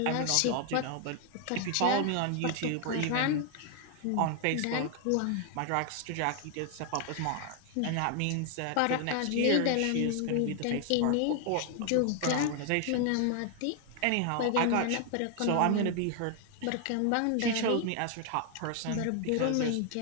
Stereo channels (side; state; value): both; different; correlation 0.00